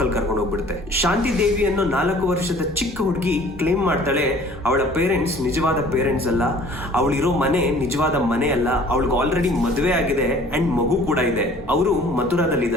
ಅಲ್ಲಿ ಕರ್ಕೊಂಡು ಹೋಗ್ಬಿಡುತ್ತೆ. ಶಾಂತಿ ದೇವಿ ಅನ್ನೋ 4 ವರ್ಷದ ಚಿಕ್ಕ ಹುಡುಗಿ ಕ್ಲೇಮ್ ಮಾಡ್ತಾಳೆ ಅವಳ ಪೇರೆಂಟ್ಸ್ ನಿಜವಾದ ಪೇರೆಂಟ್ಸ್ ಅಲ್ಲ, ಅವಳಿರೋ ಮನೆ ನಿಜವಾದ ಮನೆ ಅಲ್ಲ, ಅವಳಿಗೆ ಆಲ್ರೆಡಿ ಮದುವೆ ಆಗಿದೆ ಅಂಡ್ ಮಗು ಕೂಡ ಇದೆ, ಅವರು ಮಥುರಾದಲ್ಲಿ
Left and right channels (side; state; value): both; normal; correlation 0.51